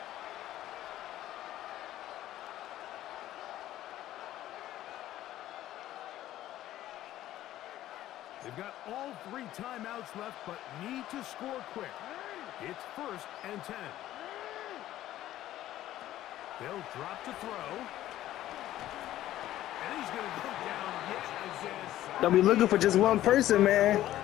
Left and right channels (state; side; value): quieter; right; 13.8 dB